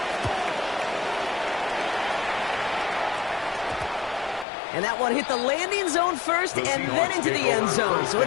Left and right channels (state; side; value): drops out; right; at 4.5 s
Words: And that one hit the landing zone first and then into the end zone. So